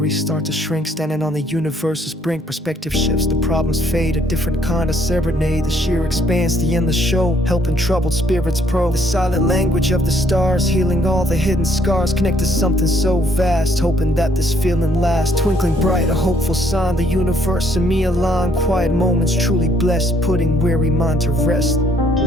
start to shrink, standing on the universe's brink. Perspective shifts, the problems fade, a different kind of serenade. The sheer expanse, the endless show, helping troubled spirits probe. The silent language of the stars, healing all the hidden scars. Connect to something so vast, hoping that this feeling lasts. Twinkling bright, a hopeful sign, the universe and me align. Quiet moments truly blessed, putting weary mind to rest.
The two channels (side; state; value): both; normal; correlation 0.67